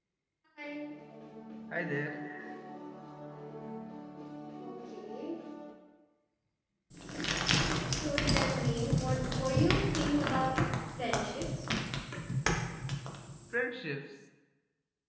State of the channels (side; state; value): both; identical; correlation 1.00